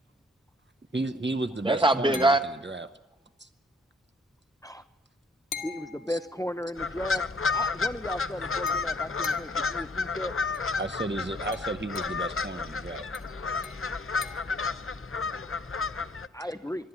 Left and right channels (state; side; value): normal; both; correlation 0.61